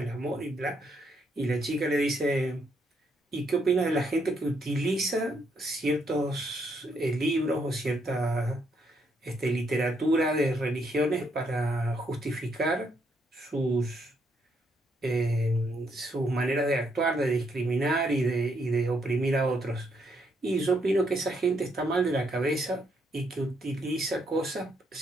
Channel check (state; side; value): normal; both; correlation 0.74